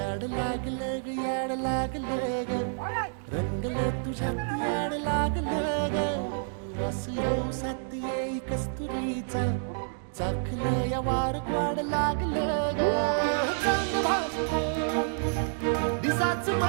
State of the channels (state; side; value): silent; left; digital silence